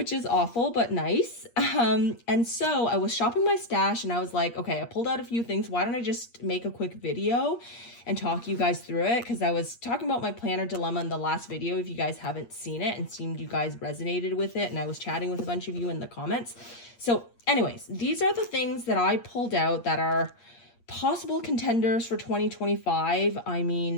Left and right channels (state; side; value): late; right; 8.5 ms